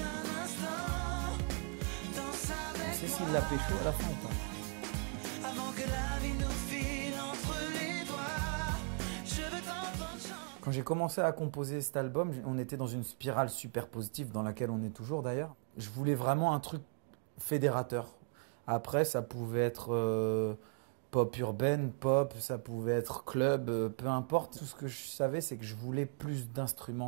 instant, danse avec C'est moi. s'il l'a pécho à la fin, quoi. Avant que la vie nous file entre les doigts, je veux t'entendre chanter. Quand j'ai commencé à composer cet album, on était dans une spirale super positive dans laquelle on est toujours d'ailleurs. Je voulais vraiment un truc fédérateur. Après, ça pouvait être pop urbaine, pop, ça pouvait être club, peu importe. Tout ce que je savais, c'est que je voulais plus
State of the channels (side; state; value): left; quieter; 37.3 dB